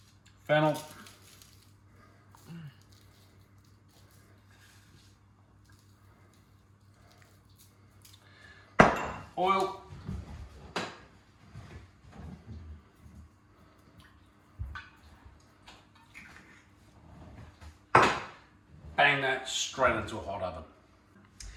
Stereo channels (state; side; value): identical; both; correlation 1.00